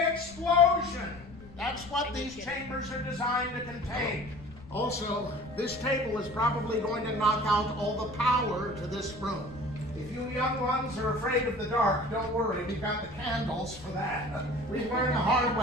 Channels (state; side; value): noise; left; rumble, 19 dB below the sound